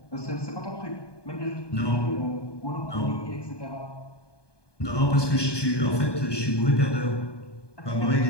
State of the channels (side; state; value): right; late; 1.2 ms